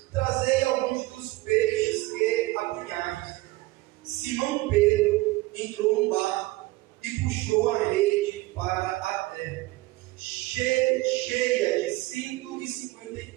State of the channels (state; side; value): quieter; left; 20.4 dB